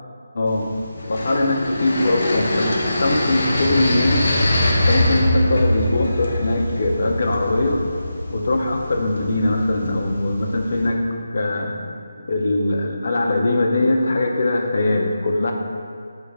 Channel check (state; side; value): inverted; both; correlation -0.89